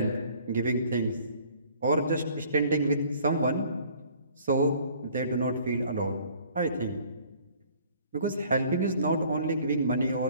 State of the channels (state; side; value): inverted; both; correlation -0.56